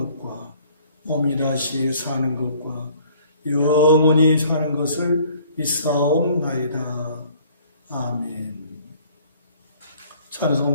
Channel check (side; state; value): both; inverted; correlation -0.56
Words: 몸이 다시 사는 것과 영원히 사는 것을 믿사옵나이다. 아멘.